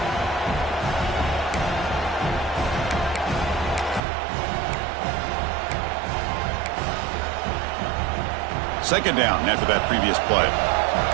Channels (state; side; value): drops out; left; at 4.0 s